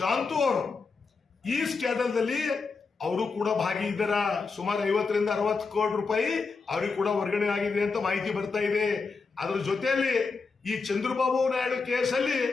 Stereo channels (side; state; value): right; quieter; 4.6 dB